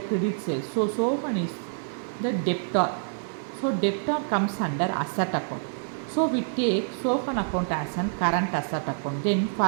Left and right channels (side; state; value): left; silent; digital silence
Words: credit sale. So Sohan is the debtor. So debtor comes under asset account. So we take Sohan account as an current asset account. Then